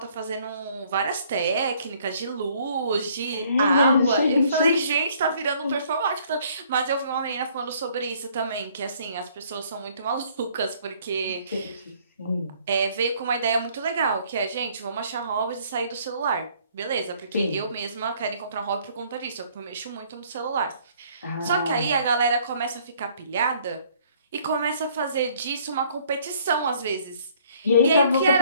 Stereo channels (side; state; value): both; inverted; correlation -0.61